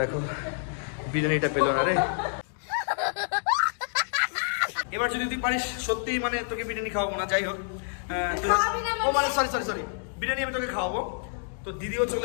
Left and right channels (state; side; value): silent; right; digital silence